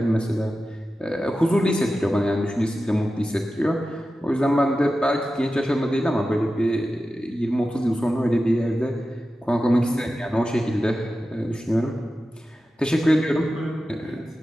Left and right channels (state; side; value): normal; both; correlation 0.93